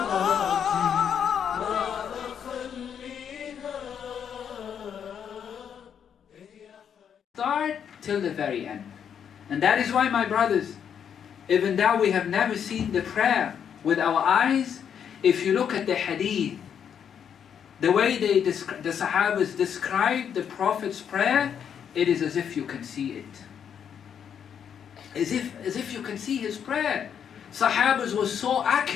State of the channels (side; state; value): right; quieter; 8.1 dB